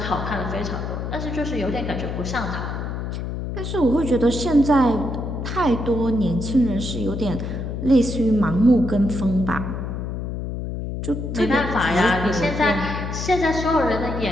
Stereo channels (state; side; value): noise; left; hum, 5 dB below the sound